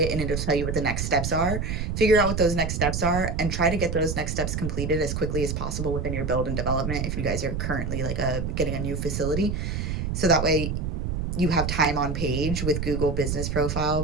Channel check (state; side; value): noise; right; rumble, 2 dB below the sound